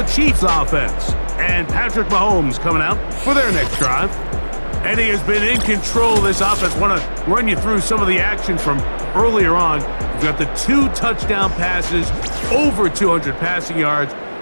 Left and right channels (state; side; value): inverted; both; correlation -1.00